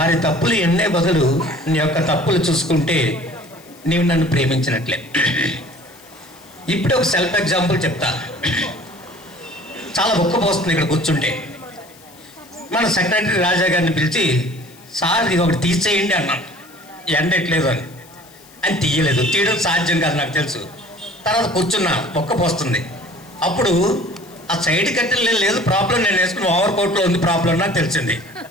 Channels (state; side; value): noise; left; hiss, 24 dB below the sound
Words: తప్పులు ఎన్నే బదులు నీ యొక్క తప్పులు చూసుకుంటే నీవు నన్ను ప్రేమించినట్లే. ఇప్పుడు ఒక సెల్ఫ్ ఎగ్జాంపుల్ చెప్తా. చాలా ఒక్కపోస్తుంది ఇక్కడ కూర్చుంటే. మన సెక్రటరీ రాజా గారిని పిలిచి, సార్ ఇది ఒకటి తీసేయండి అన్నాను, ఎండట్లేదు అని. అని తీయలేదు. తీయడం సాధ్యం కాదు నాకు తెలుసు. తర్వాత కూర్చున్నా, ఒక్కపోస్తుంది. అప్పుడు ఆ సైడ్ కట్టెలు లేదు ప్రాబ్లం, నేను వేసుకుని ఓవర్ కోట్లో ఉంది ప్రాబ్లం నాకు తెలిసింది.